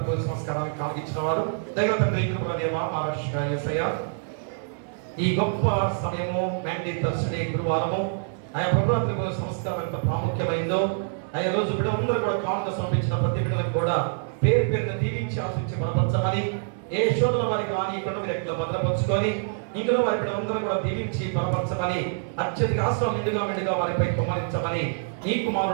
సంస్కారానికి కాగిచ్చిన వారు దైవ తండ్రి కృపదేవ మహారాష్ట్ర యేసయ్య, ఈ గొప్ప సమయము మ్యాండీ థర్స్డే గురువారము ఆయా ప్రభుత్వ సంస్కారం ఎంత ప్రాముఖ్యమైందో ఆయా రోజు బిడ్డలందరూ కూడా కానుక సమర్పించిన ప్రతి బిడ్డలకు కూడా పేరు పేరున దీవించి ఆశించి బలపరచమని, ఏ శోధన వారికి రానియకుండా మీరు ఎక్కడ భద్రపరుచుకొని ఇందులో వారి బిడ్డలందరూ కూడా దీవించి బలపరచమని, అత్యధిక ఆశ్రమం మెండుగా వారిపై కుమ్మరించమని ఈ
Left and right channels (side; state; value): left; silent; digital silence